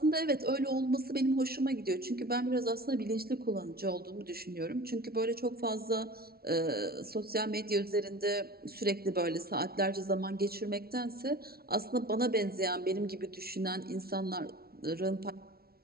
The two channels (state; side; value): late; left; 0.44 ms